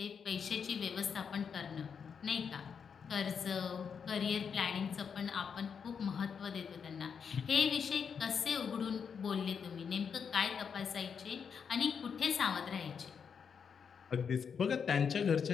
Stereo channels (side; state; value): right; quieter; 6.6 dB